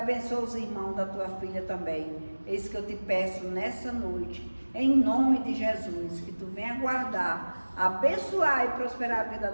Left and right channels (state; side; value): inverted; both; correlation -1.00